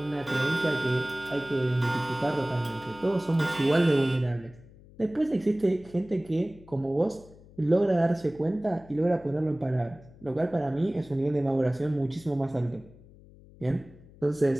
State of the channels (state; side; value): noise; left; hum, 23 dB below the sound